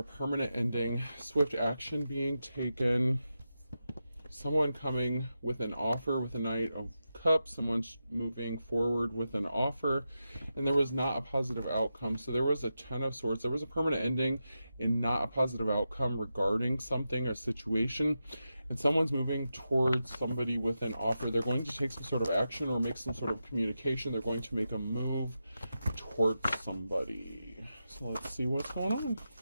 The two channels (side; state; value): both; inverted; correlation -0.89